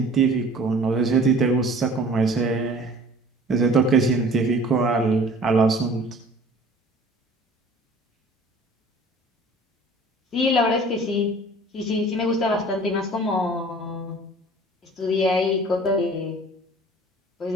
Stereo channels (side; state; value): both; normal; correlation 0.48